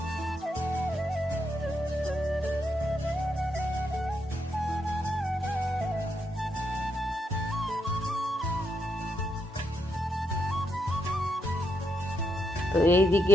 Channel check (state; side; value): normal; both; correlation 0.80